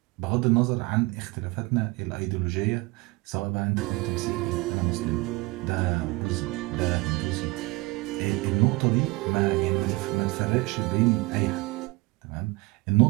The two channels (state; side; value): quieter; left; 23.2 dB